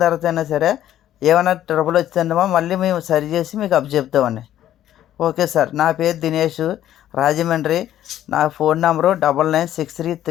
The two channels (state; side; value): quieter; right; 12.0 dB